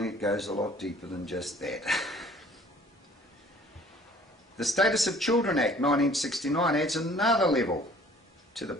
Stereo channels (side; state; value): both; normal; correlation 0.53